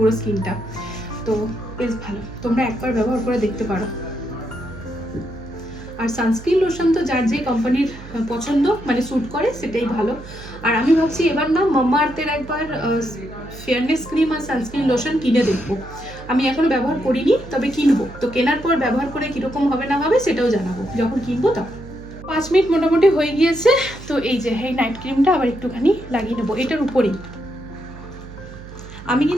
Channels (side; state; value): right; noise; hum, 15 dB below the sound